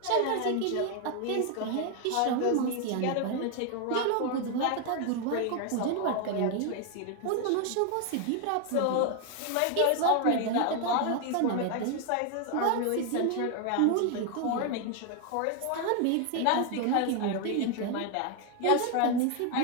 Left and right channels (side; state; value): both; different; correlation 0.01